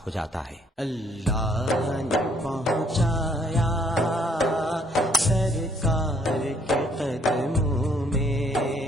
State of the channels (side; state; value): both; normal; correlation 0.66